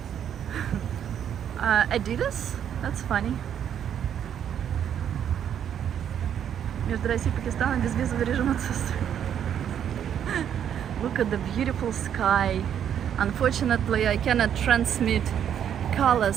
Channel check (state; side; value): quieter; left; 9.2 dB